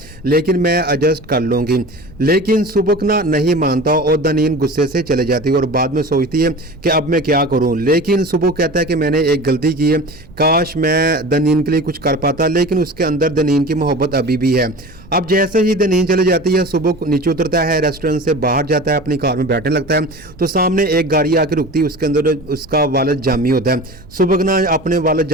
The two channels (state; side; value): noise; right; rumble, 22 dB below the sound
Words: लेकिन मैं एडजस्ट कर लूँगी। लेकिन सुबुक ना नहीं मानता और दनीन गुस्से से चले जाती है और बाद में सोचती है कि अब मैं क्या करूं। लेकिन सुबुक कहता है कि मैंने एक गलती की है, काश मैं दनीन के लिए कुछ कर पाता, लेकिन उसके अंदर दनीन की मोहब्बत अभी भी है। अब जैसे ही दनीन चले जाती है, सुबुक नीचे उतरता है, रेस्टोरेंट से बाहर जाता है, अपनी कार में बैठने लगता है तो सामने एक गाड़ी आके रुकती है, उसके अंदर उसका वालिद जामी होता है। सुबुक ना अपने वालिद